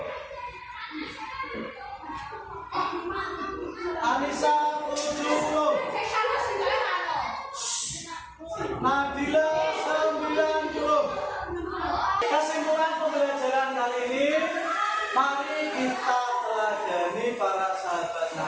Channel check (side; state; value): both; identical; correlation 1.00